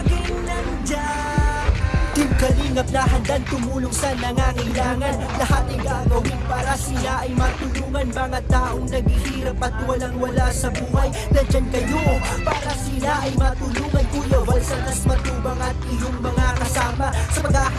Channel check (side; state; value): both; identical; correlation 1.00